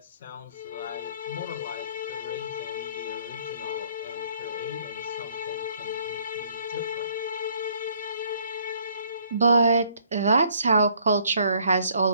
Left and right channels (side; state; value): both; inverted; correlation -0.63